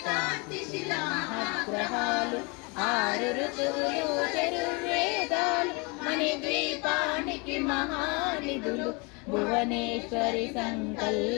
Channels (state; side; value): quieter; right; 29.1 dB